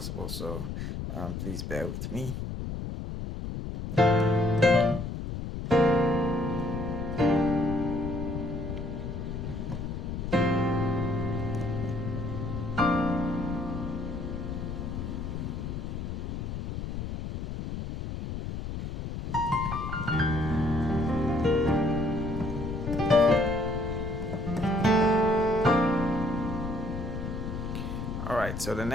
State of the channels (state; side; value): noise; left; rumble, 5 dB below the sound